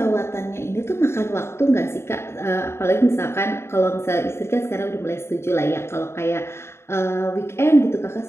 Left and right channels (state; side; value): late; right; 0.12 ms